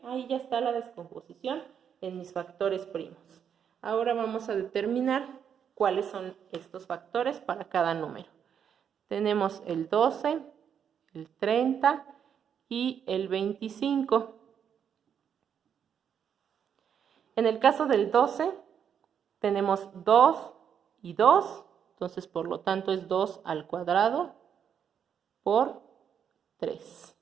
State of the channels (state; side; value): quieter; left; 8.1 dB